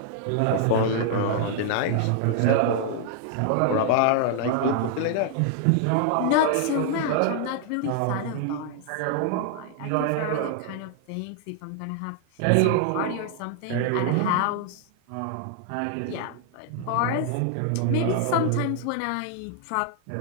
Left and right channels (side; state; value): both; different; correlation 0.00